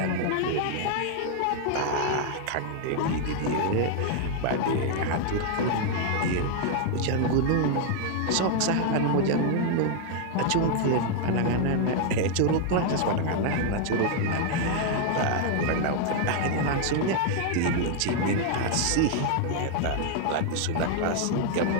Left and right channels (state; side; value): different; both; correlation 0.00